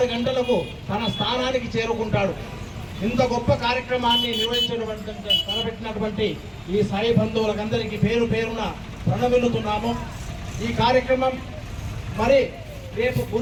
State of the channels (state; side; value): identical; both; correlation 1.00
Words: గంటలకు తన స్థానానికి చేరుకుంటాడు. ఇంత గొప్ప కార్యక్రమాన్ని తలపెట్టినటువంటి ఈ సాయి బంధువులకందరికీ పేరు పేరున ప్రణమిల్లుతున్నాము. ఈ కార్యక్రమం మరి రేపు